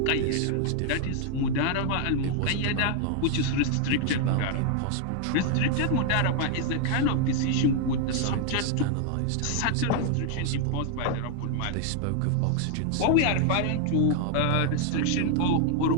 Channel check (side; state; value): both; different; correlation 0.00